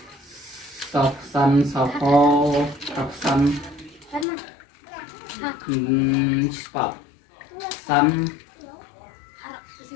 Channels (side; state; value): right; drops out; at 4.2 s